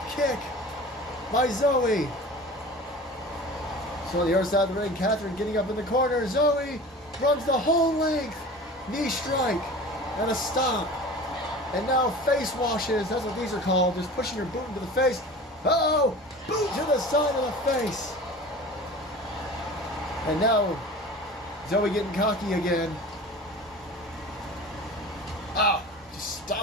kick by Zoe. So on the other side of the ring, Catherine getting up in the corner. Zoe runs the whole length. Knee strike and a stop. And now face washes. That's what these are called. Just pushing her boot into the face. Uh-oh. Boot to the side of the face. And now Zoe getting cocky again. Ah, just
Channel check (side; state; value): both; normal; correlation 0.38